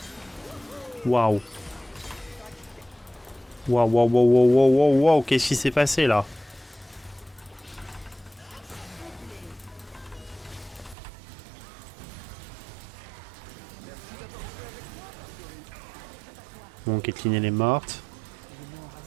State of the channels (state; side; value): drops out; left; at 11.0 s